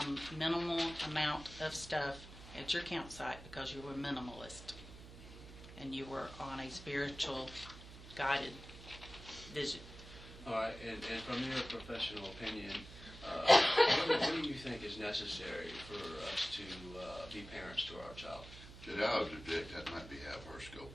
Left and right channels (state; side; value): noise; right; hum, 15 dB below the sound